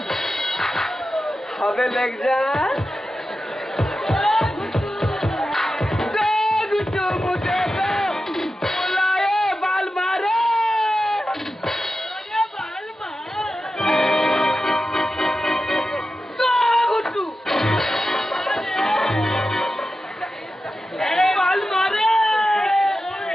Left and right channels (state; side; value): normal; both; correlation 0.92